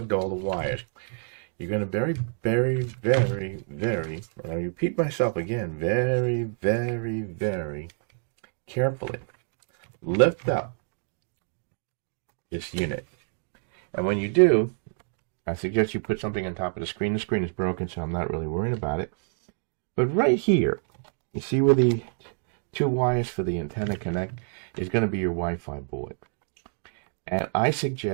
all the wires, you're going to very, very, very, very, and I repeat myself again, very, very, very carefully lift up this unit. And when you do, I suggest you put something on top of the screen. The screen is broken, so I'm not really worried about it. But right here, you see where the 2 wires for the antenna connect is going to be your Wi-Fi board. And I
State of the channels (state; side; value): silent; left; digital silence